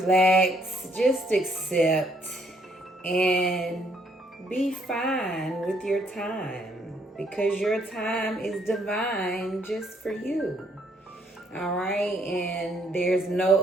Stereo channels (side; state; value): both; normal; correlation 0.68